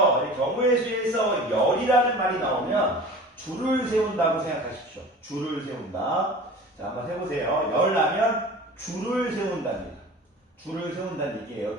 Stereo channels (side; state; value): both; normal; correlation 0.39